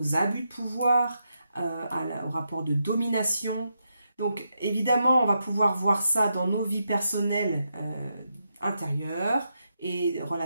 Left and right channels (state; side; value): inverted; both; correlation -0.84